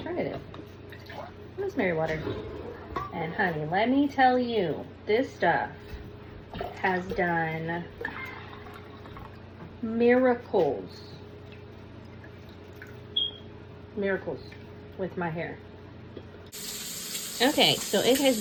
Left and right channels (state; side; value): identical; both; correlation 1.00